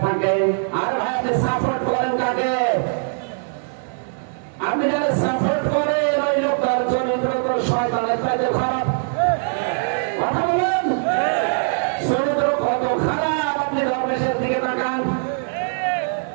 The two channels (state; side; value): silent; left; digital silence